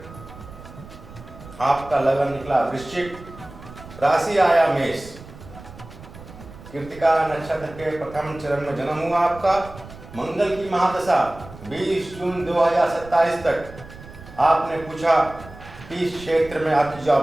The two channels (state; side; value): noise; right; rumble, 17 dB below the sound